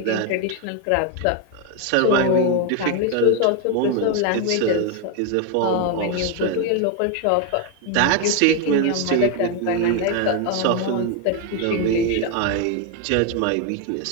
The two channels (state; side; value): different; both; correlation 0.01